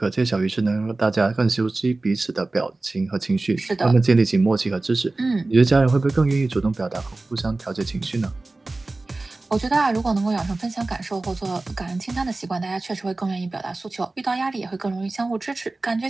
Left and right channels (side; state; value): left; quieter; 3.2 dB